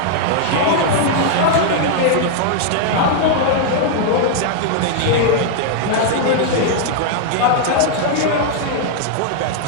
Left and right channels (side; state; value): both; different; correlation -0.01